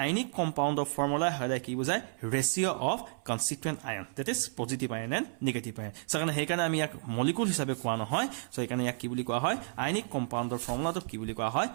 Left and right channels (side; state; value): left; silent; 57 dB below the other